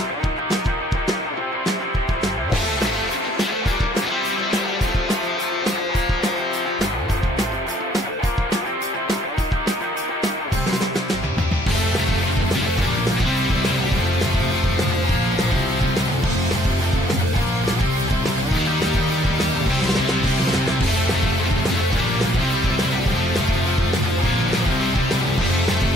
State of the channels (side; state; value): both; normal; correlation 0.64